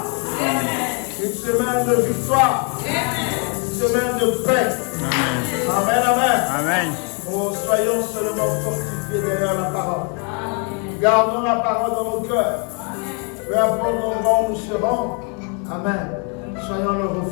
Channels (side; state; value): right; quieter; 37.4 dB